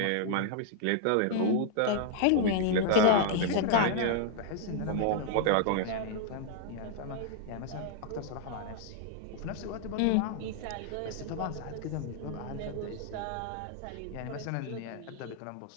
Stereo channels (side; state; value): both; different; correlation 0.00